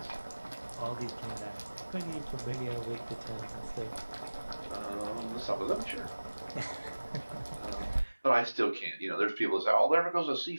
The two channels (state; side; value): inverted; both; correlation -1.00